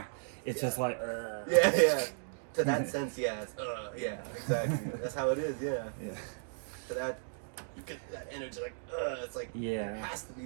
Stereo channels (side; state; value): left; silent; digital silence